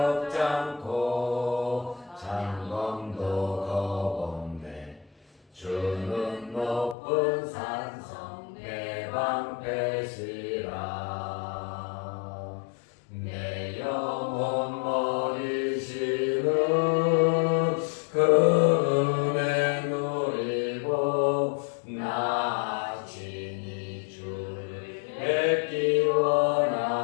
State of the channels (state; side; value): drops out; right; at 7.0 s